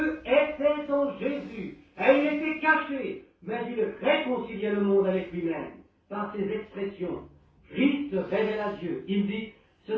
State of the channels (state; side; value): identical; both; correlation 1.00